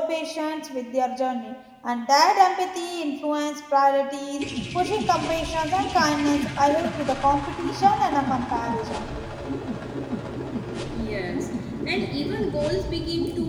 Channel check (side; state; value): both; identical; correlation 1.00